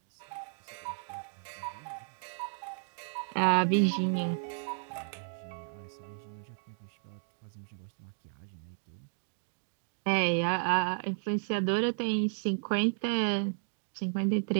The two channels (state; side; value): silent; left; digital silence